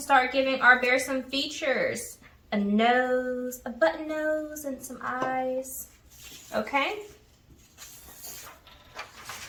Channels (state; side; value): identical; both; correlation 1.00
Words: start giving our bear some features. A nose, a button nose, and some eyes. Okay?